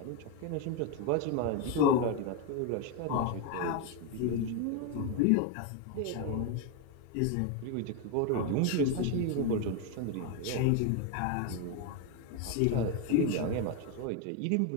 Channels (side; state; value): both; different; correlation 0.02